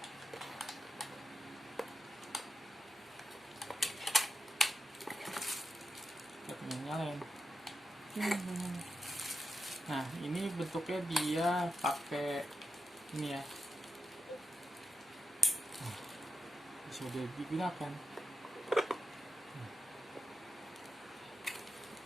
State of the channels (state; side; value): normal; both; correlation 0.89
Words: Kita nyalain. Nah, ini bentuknya dia pakai ini ya. Sudah digunakan.